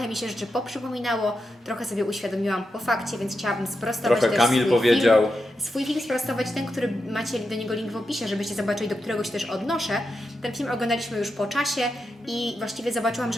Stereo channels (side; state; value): both; normal; correlation 0.87